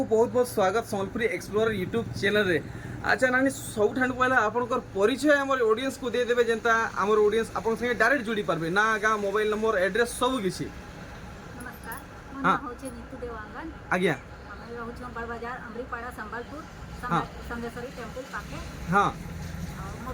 बहुत बहुत स्वागत सम्बलपुरी एक्सप्लोरर यूट्यूब चैनल रे अच्छा नानी सब ठान पहला आपनकर परिचय हमर ऑडियंस को दे देबे जेंता हमर ऑडियंस आपन संगे डायरेक्ट जुड़ी पारबे ना गा मोबाइल नंबर एड्रेस सब किछि नमस्कार मोर नाम होचे नीतू देवांगन आज्ञा हमें रहउछ बड़ बाजार अमरीपाड़ा संबलपुर हाँ। संगेश्वरी टेंपल पाके हां और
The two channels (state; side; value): identical; both; correlation 1.00